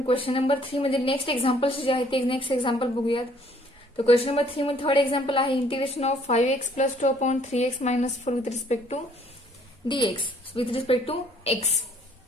क्वेश्चन नंबर 3 मध्ये नेक्स्ट एक्झाम्पल्स जे आहेत ते नेक्स्ट एक्झाम्पल बघूयात. तर क्वेश्चन नंबर 3 मध्ये थर्ड एक्झाम्पल आहे integration of 5x + 2 upon 3x - 4 with respect to dx with respect to x.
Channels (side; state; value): both; normal; correlation 0.61